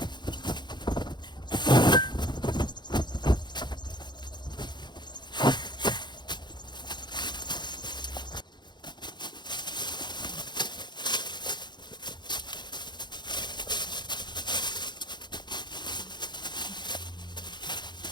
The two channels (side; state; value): right; late; 0.21 ms